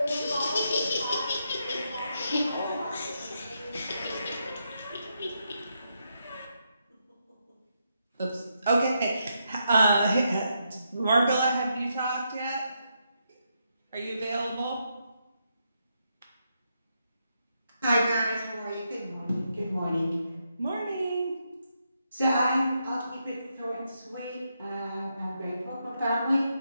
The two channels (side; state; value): both; inverted; correlation -0.81